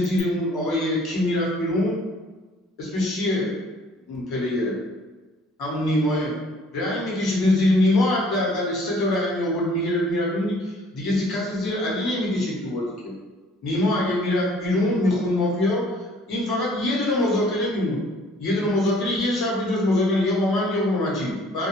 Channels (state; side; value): normal; both; correlation 0.57